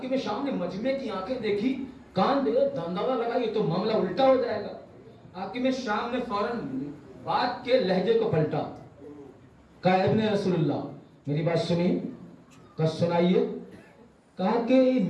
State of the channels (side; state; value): both; identical; correlation 1.00